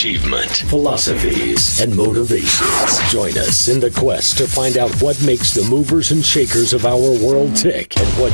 philosophies, and motivations. Join us in the quest to find out what makes the movers and shakers of our world tick and what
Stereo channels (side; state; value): both; inverted; correlation -1.00